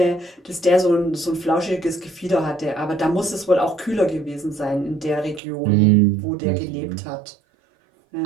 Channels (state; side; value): drops out; left; at 5.4 s